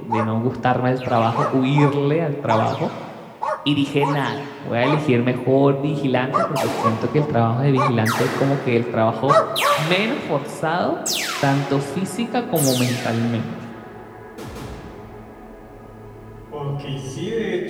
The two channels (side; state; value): both; identical; correlation 1.00